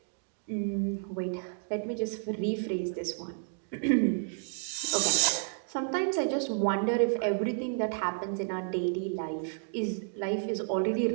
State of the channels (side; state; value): left; silent; digital silence